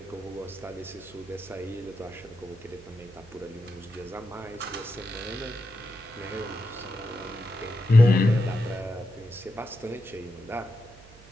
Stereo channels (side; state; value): right; noise; hum, 22 dB below the sound